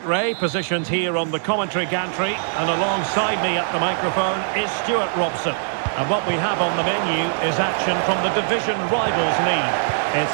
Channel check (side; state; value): left; silent; digital silence